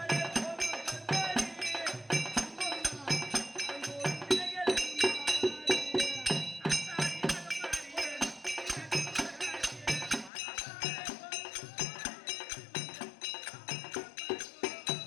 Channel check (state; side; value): drops out; right; at 10.3 s